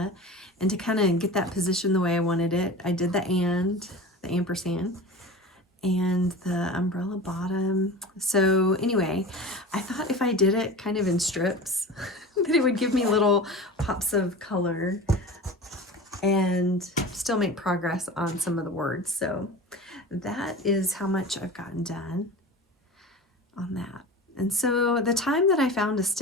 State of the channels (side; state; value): both; normal; correlation 0.33